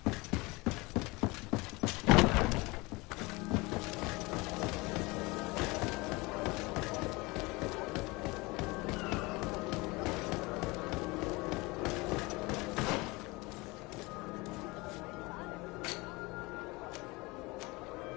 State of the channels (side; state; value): right; quieter; 24.1 dB